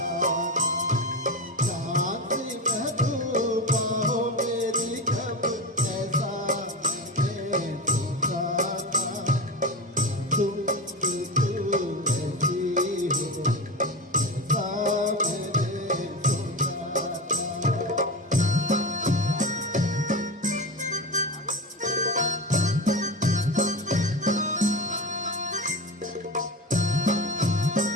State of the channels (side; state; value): both; normal; correlation 0.24